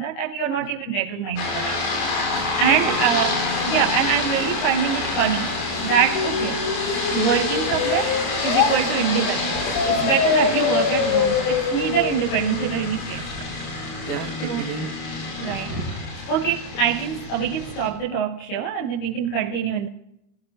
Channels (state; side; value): late; right; 25 ms